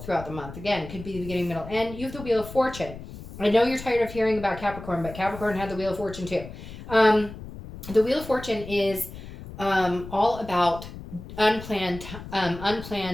the month. Again, it could be the beginning, middle, end. You have the Wheel of Fortune. I know you're tired of hearing about Capricorn, but Capricorn had the Wheel of Fortune too. The Wheel of Fortune is all about unplanned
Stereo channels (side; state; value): left; noise; rumble, 13 dB below the sound